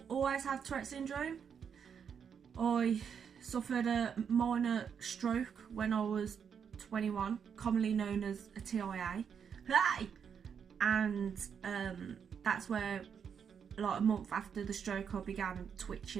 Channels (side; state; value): left; quieter; 7.2 dB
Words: always have Tourette syndrome. I suffered a minor stroke when I was 21, commonly known as a TIA, hi, and that's where, like, a month after the stroke, I began